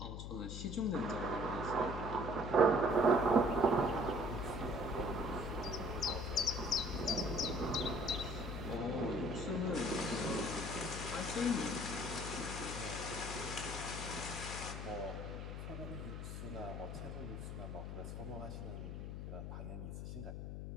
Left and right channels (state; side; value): noise; left; hum, 6 dB below the sound